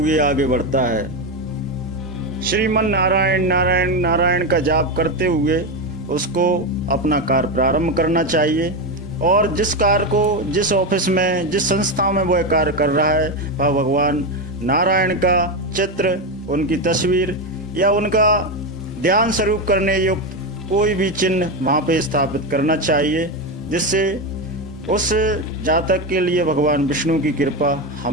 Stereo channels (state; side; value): normal; both; correlation 0.13